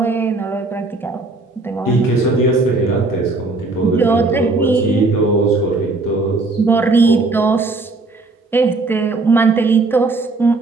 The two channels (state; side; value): quieter; left; 3.5 dB